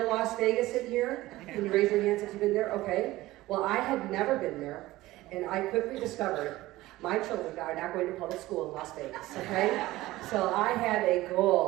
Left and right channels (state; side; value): quieter; left; 17.5 dB